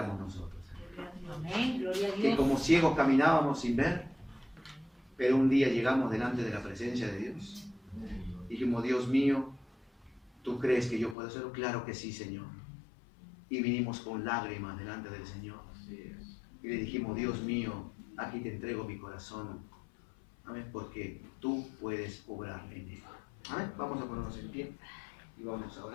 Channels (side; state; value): right; drops out; at 11.2 s